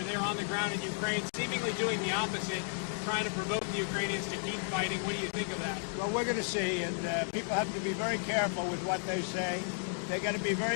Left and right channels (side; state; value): right; silent; 56 dB below the other